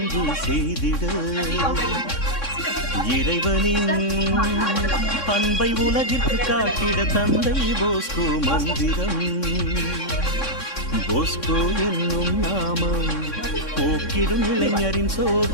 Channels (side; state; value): right; late; 3.6 ms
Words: செய்திட இறைவனின் அன்பை உலகிற்கு காட்டிட தந்தை போஸ்கோ மந்திரம் போஸ்கோ என்னும் நாமம் போக்கிடும் இளைஞரின்